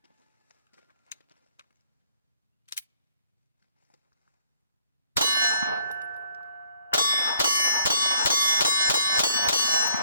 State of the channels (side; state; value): both; inverted; correlation -0.61